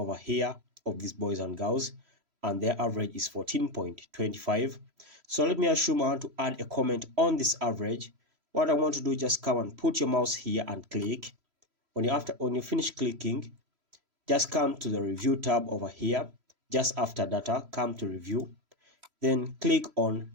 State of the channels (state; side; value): late; left; 3.0 ms